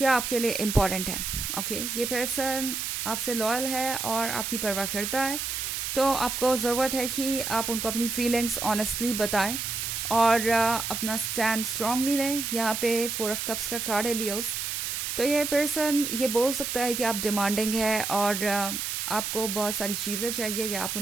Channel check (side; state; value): right; noise; hiss, 3 dB below the sound